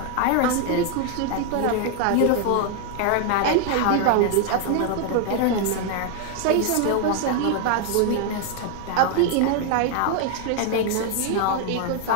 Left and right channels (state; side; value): different; both; correlation 0.00